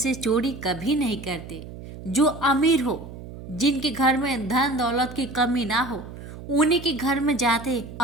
चोरी कभी नहीं करते। जो अमीर हो, जिनके घर में धन दौलत की कमी ना हो, उन्हीं के घर में जाते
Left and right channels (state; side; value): noise; right; hum, 13 dB below the sound